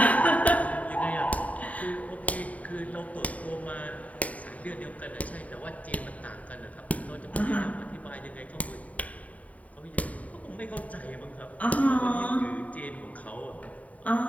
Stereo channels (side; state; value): right; late; 0.070 ms